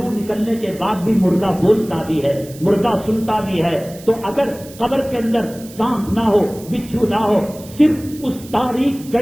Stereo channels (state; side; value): noise; right; hiss, 19 dB below the sound